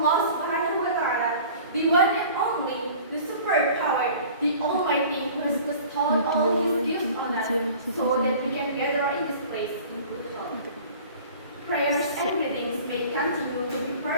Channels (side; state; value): both; inverted; correlation -0.44